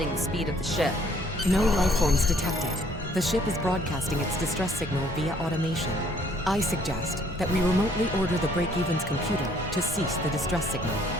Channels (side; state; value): both; normal; correlation 0.62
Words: the speed of the ship. No life forms detected. The ship is broadcasting its distress signal via automation. I suggest that we remotely order the break-even's computer to cease the distress signal.